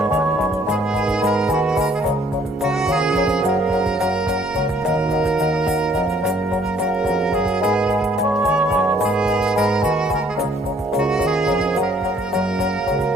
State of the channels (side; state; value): both; normal; correlation 0.64